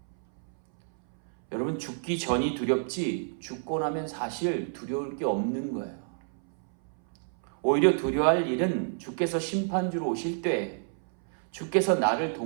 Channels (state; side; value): silent; left; 59 dB below the other